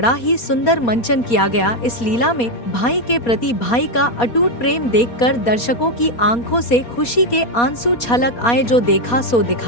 ही सुंदर मंचन किया गया। इस लीला में भाई के प्रति भाई का अटूट प्रेम देखकर दर्शकों की आंखों से खुशी के आंसू छलक आए, जो देखा सो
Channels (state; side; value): late; right; 4.2 ms